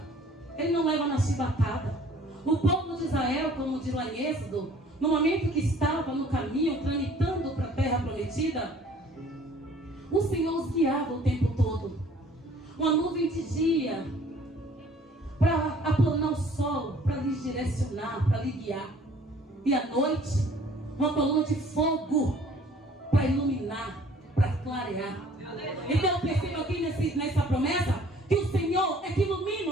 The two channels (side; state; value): both; normal; correlation 0.54